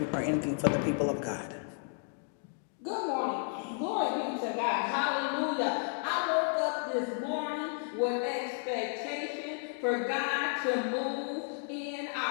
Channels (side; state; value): right; silent; 56 dB below the other